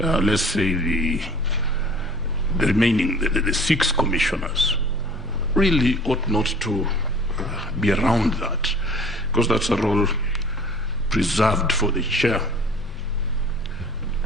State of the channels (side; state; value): both; normal; correlation 0.48